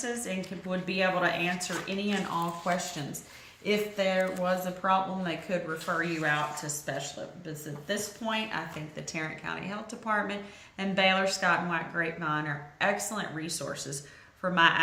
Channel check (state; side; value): identical; both; correlation 1.00